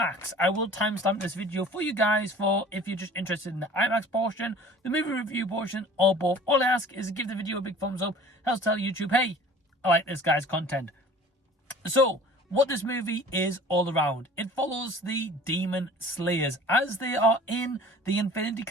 I will timestamp this video for you guys for if you're just interested in the IMAX portion, the movie review portion, or both. All I ask is to give the video a big thumbs up. Helps tell YouTube, hey, I like this guy's content. So, what this movie is all around. It follows the Demon Slayers as they are in the Infinity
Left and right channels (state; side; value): normal; both; correlation 0.46